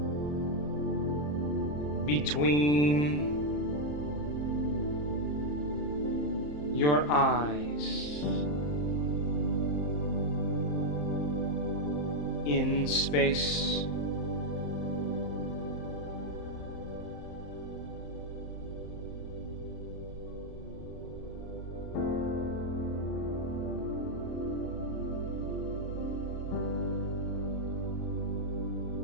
between your eyes in space.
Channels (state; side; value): late; right; 34 ms